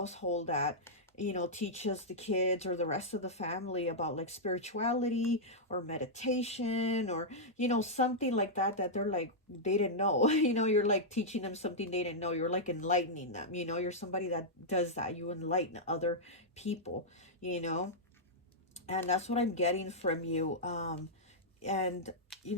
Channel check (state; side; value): normal; both; correlation -0.08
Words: that, you know, teaches the kids or the rest of the family about like spirituality or meditation, or you know, something like that, that they're like, they didn't know. You know, you're like teaching them something they didn't know. You're like enlightening them, you know. You're somebody that does that. You enlighten other people, you know. And that's what I'm getting from you. And you